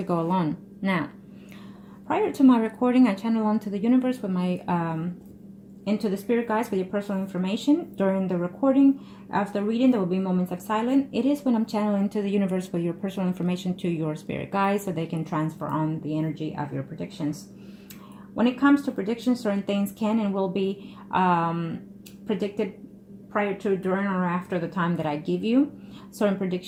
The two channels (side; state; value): both; identical; correlation 1.00